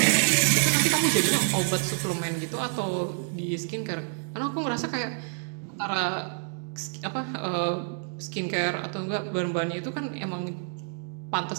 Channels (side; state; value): left; silent; digital silence